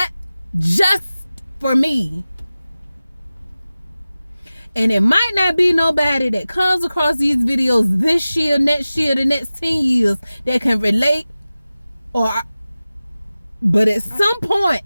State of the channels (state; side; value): inverted; both; correlation -0.96